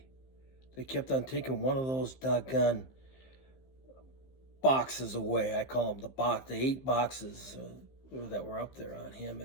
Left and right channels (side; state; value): right; late; 15 ms